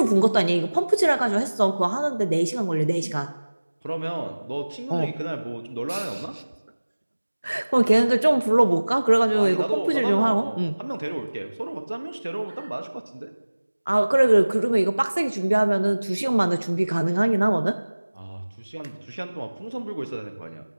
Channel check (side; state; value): both; inverted; correlation -1.00